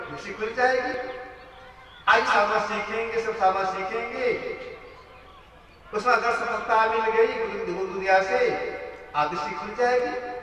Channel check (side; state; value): both; identical; correlation 1.00